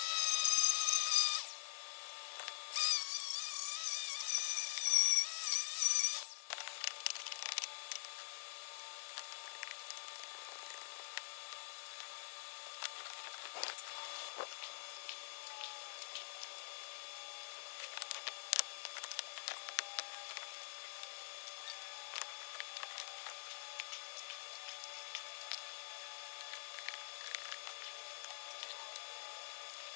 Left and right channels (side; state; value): right; silent; digital silence